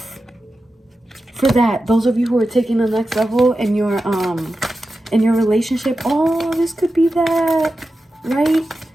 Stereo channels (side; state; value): both; normal; correlation 0.92